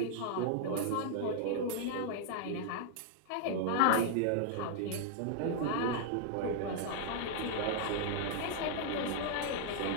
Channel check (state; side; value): different; both; correlation -0.01